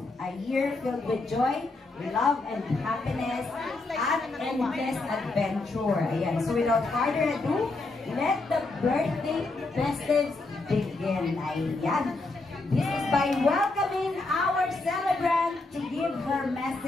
a year filled with joy, love, and happiness, at endless adventure. Ayan, so without further ado, let the birthday festives begin. Ayan. This is by welcoming our celebrant to give her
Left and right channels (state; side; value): quieter; right; 3.3 dB